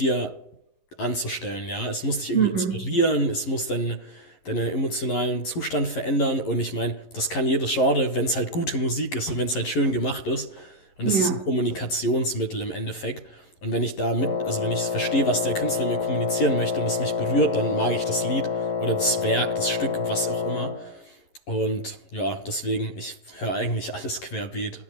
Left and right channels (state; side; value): late; right; 11 ms